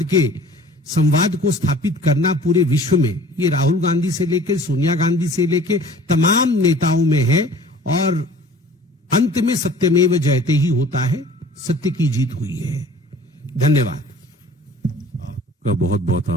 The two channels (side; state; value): both; normal; correlation 0.48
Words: के संवाद को स्थापित करना पूरे विश्व में, ये राहुल गांधी से लेकर सोनिया गांधी से लेकर तमाम नेताओं में है। और अंत में सत्यमेव जयते ही होता है, सत्य की जीत हुई है। धन्यवाद। आपका बहुत बहुत